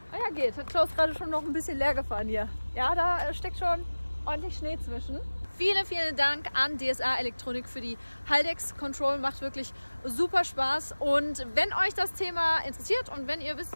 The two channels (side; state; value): both; inverted; correlation -1.00